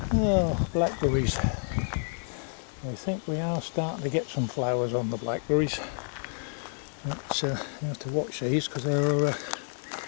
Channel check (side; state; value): right; silent; 58 dB below the other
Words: Oh, blackberries. I think we are starting to get some flowers on the blackberries. But you have to watch these, because they're